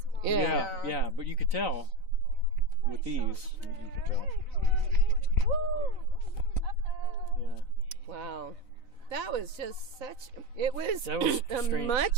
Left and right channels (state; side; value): late; left; 3.9 ms